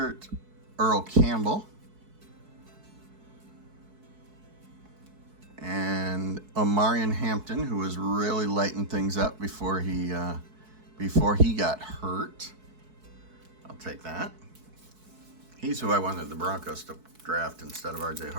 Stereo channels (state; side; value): late; left; 4.6 ms